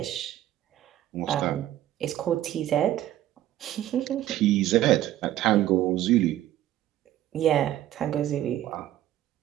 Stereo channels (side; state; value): left; quieter; 13.2 dB